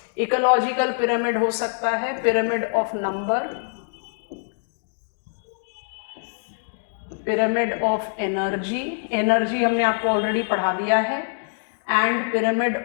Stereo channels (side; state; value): right; silent; digital silence